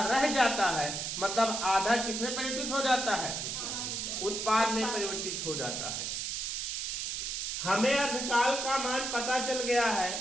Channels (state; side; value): noise; right; hiss, 3 dB below the sound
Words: रह जाता है, मतलब आधा किसमें परिवर्तित हो जाता है? उत्पाद में परिवर्तित हो जाता है। हमें अर्धकाल का मान पता चल गया